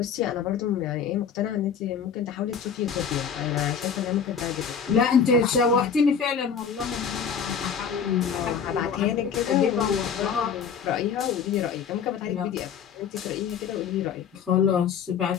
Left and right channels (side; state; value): right; quieter; 7.0 dB